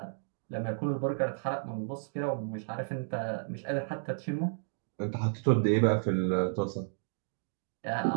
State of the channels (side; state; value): left; silent; digital silence